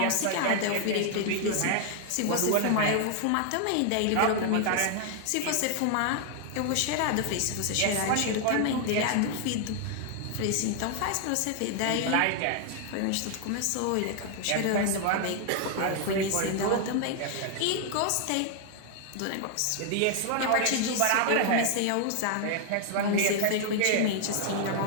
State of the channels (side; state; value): both; different; correlation 0.00